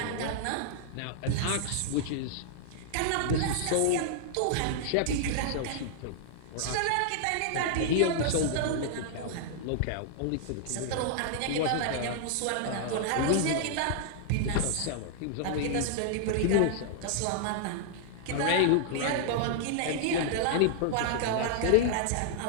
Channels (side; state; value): both; different; correlation -0.01